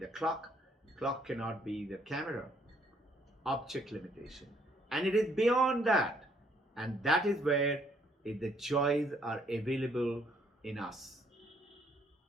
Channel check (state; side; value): normal; both; correlation 0.67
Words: clock cannot be the camera. Object limitation. And it is beyond that. And that is where the joys are available in us.